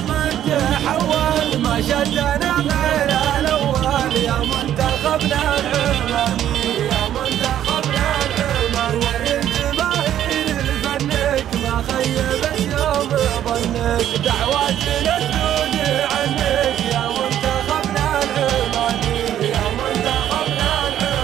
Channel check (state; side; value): quieter; left; 11.1 dB